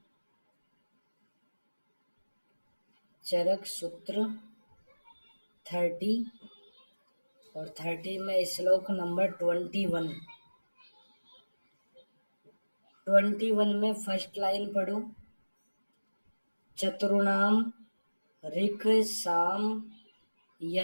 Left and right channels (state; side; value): inverted; both; correlation -1.00